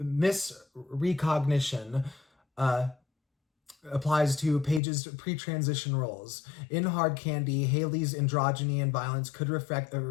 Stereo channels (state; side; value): drops out; right; at 4.8 s